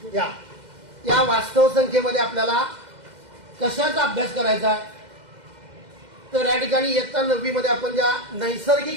या वास्तव संख्येमध्ये आपल्याला कशाचा अभ्यास करायचा आहे तर या ठिकाणी इयत्ता 9वी मध्ये आपण ज्या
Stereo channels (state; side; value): late; left; 2.1 ms